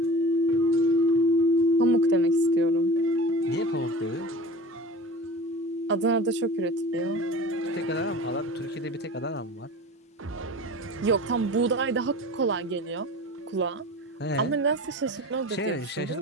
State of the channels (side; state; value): both; normal; correlation 0.37